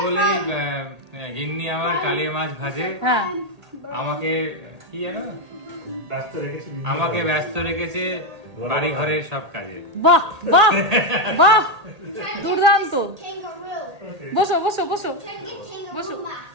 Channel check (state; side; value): late; left; 1.8 ms